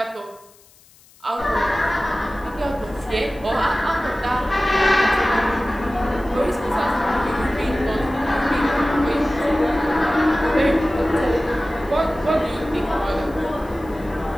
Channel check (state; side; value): noise; left; hiss, 28 dB below the sound